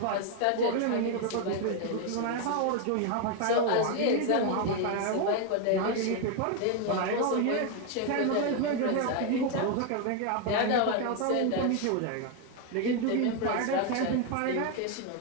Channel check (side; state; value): both; different; correlation 0.01